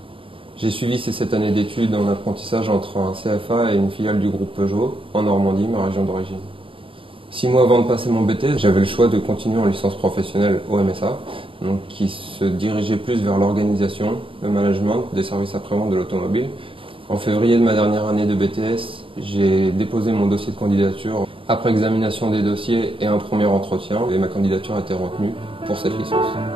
J'ai suivi ces 7 années d'études en apprentissage entre un CFA et une filiale du groupe Peugeot, en Normandie, ma région d'origine. 6 mois avant de passer mon BTS, j'avais le choix de continuer en licence professionnelle au MSA, donc qui se dirigeait plus vers l'organisation, le management des services après-vente de l'automobile. En février de ma dernière année de BTS, j'ai déposé mon dossier de candidature après examination des dossiers et un premier entretien, et ma candidature a été retenue pour cette licence.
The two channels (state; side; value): late; left; 0.26 ms